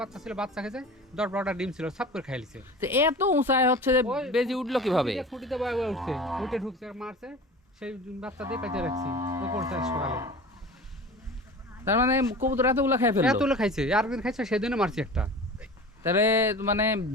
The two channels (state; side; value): normal; both; correlation 0.36